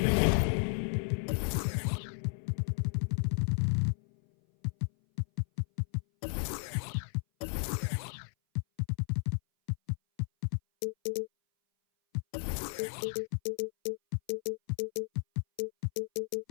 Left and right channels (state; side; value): silent; right; 55 dB below the other